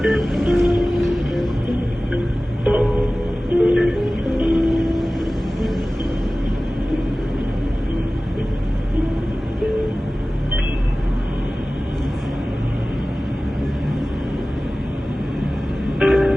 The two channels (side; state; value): both; normal; correlation 0.97